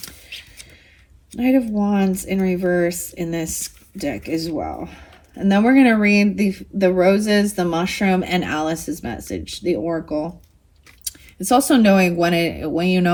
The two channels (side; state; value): both; identical; correlation 1.00